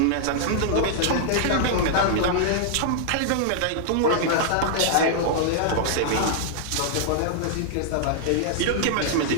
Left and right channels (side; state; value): both; different; correlation -0.01